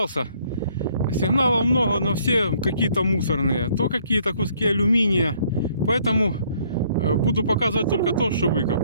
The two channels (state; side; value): inverted; both; correlation -0.64